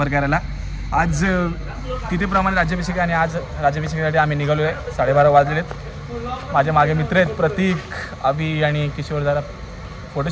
करायला. आज तिथेप्रमाणे राज्याभिषेक आणि आज राज्याभिषेकासाठी आम्ही निघालो आहे. 12:30 वाजलेत. माझ्या मागे मित्र आहेत प्रतीक, अभि आणि किशोर. जरा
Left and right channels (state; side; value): identical; both; correlation 1.00